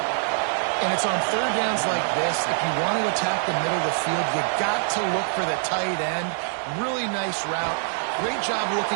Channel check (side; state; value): left; silent; digital silence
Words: And it's on third downs like this. If you want to attack the middle of the field, you got to look for the tight end. Really nice route. Great job looking